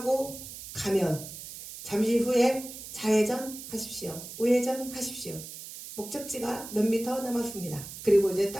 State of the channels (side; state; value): right; noise; hiss, 12 dB below the sound